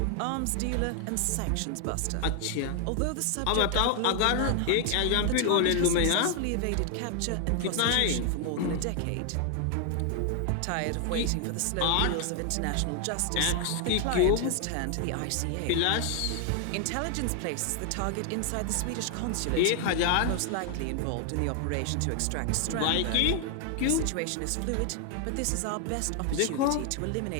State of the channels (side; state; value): both; different; correlation 0.00